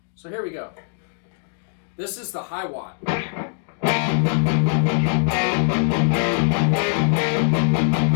So here we go. This is the Hiwatt.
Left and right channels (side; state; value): right; silent; 64 dB below the other